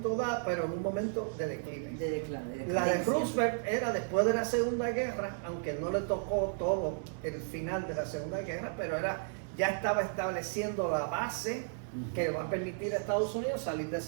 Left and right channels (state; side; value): silent; left; 55 dB below the other